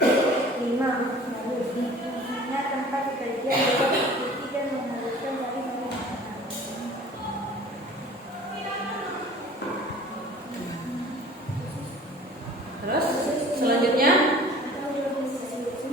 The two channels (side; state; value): both; normal; correlation 0.46